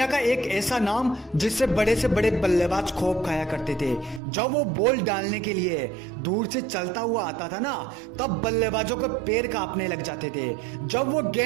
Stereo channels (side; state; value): left; drops out; at 4.2 s